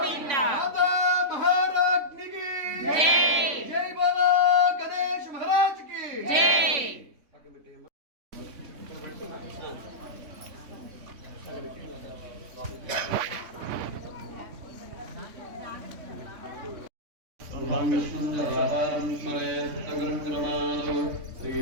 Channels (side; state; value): left; late; 3.5 ms